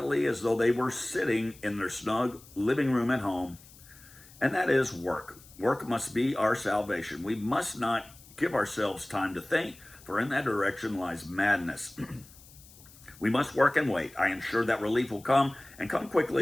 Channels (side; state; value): left; noise; hiss, 22 dB below the sound